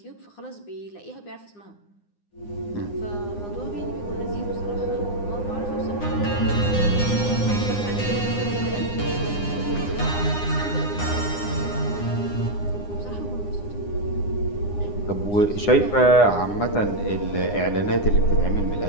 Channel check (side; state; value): right; late; 9.8 ms